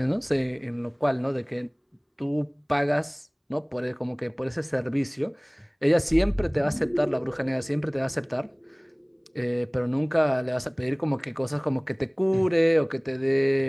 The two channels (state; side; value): identical; both; correlation 1.00